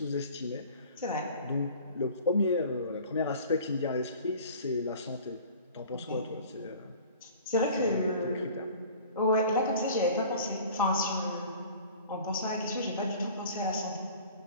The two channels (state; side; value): inverted; both; correlation -0.45